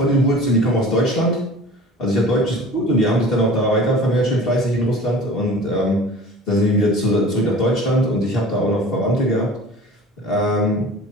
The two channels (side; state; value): both; normal; correlation 0.42